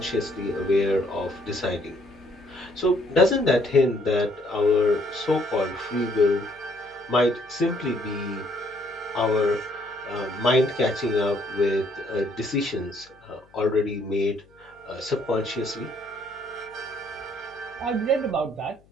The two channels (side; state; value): left; noise; hum, 30 dB below the sound